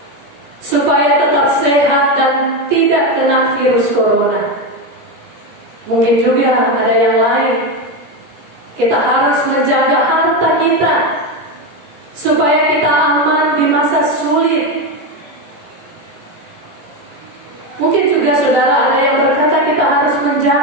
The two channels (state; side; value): late; left; 17 ms